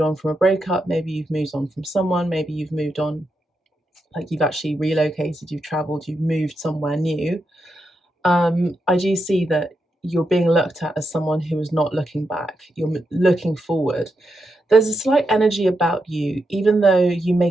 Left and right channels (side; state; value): both; normal; correlation 0.85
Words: on from a breakup. Maybe you've moved on from someone. Maybe you've moved on, like you've actually relocated. You've traveled. You've moved somewhere new. I do see that you're being looked at as someone who is not looking back. You're looking forward. There's a slight energy about you, even though you